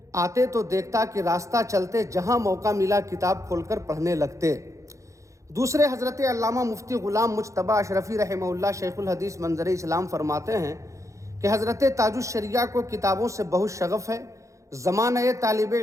آتے تو دیکھتا کہ راستہ چلتے جہاں موقع ملا کتاب کھول کر پڑھنے لگتے۔ دوسرے حضرت علامہ مفتی غلام مجتبیٰ اشرفی رحمہ اللہ شیخ الحدیث منظر اسلام فرماتے ہیں کہ حضرت تاج الشریعہ کو کتابوں سے بہت شغف ہے۔ زمانہ طالب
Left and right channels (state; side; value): late; left; 0.15 ms